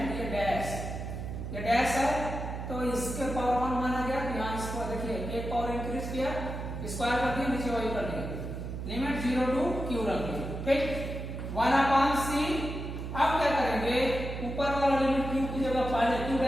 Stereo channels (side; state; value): right; noise; hum, 6 dB below the sound